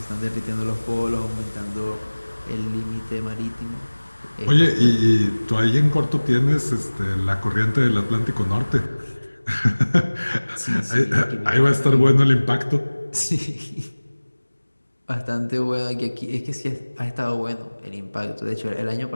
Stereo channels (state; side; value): inverted; both; correlation -1.00